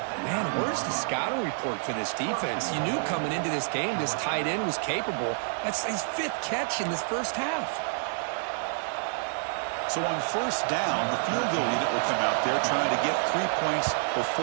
Man, where's the scouting report for this defense? You knew coming into this game this tight end was capable. That's his 5th catch in this first half. So on first down, the field goal unit will come out there trying to get 3 points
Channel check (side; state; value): left; silent; digital silence